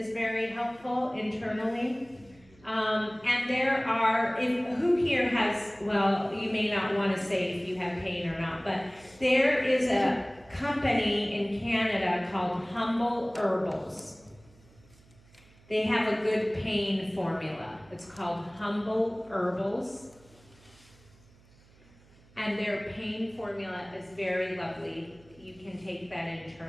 very helpful internally. And there are, who here has, well, you may not want to say if you have pain or not, but There is a company in Canada called Humble Herbals. They have a good pain formula. It's called Humble Herbals. And their pain formula is very lovely. You can take that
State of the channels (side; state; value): right; noise; hum, 27 dB below the sound